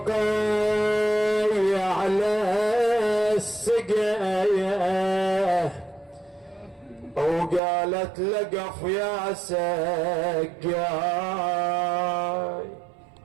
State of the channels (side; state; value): left; drops out; at 7.6 s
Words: على السقاية وقالت لقف يا سقاي.